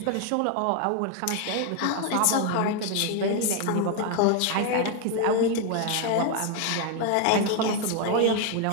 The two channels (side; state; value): both; different; correlation 0.01